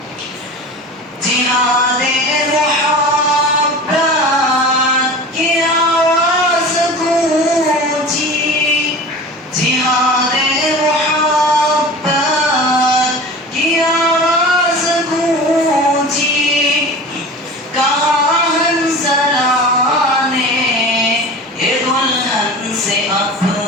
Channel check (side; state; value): both; normal; correlation 0.36